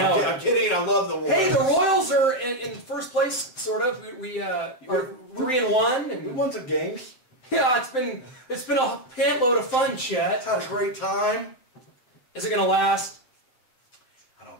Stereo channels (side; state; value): right; late; 7.8 ms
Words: I'm kidding. I love the Royals. Hey, the Royals are in first place, sort of. We are 3-1, and We won some games. Yeah, it's been a pantload of fun, Chet. Had a great time. Is it going to last?